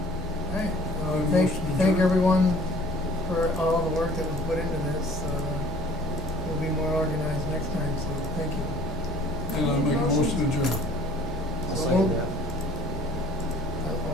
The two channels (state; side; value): normal; both; correlation 0.52